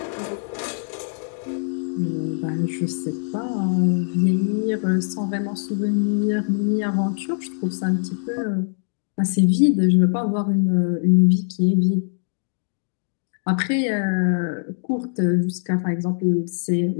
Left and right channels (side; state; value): right; silent; digital silence